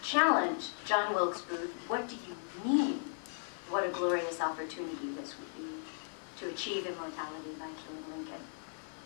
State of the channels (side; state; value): right; silent; 53 dB below the other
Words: challenged John Wilkes Booth, "What do you mean? What a glorious opportunity this would be to achieve immortality by killing Lincoln."